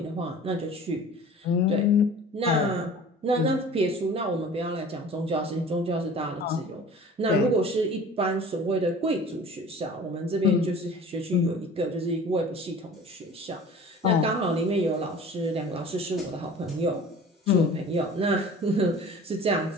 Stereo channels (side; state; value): both; normal; correlation 0.43